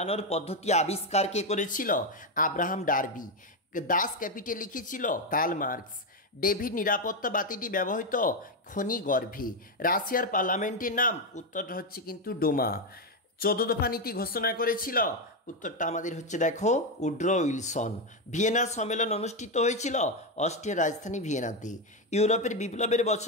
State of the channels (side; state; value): both; normal; correlation 0.07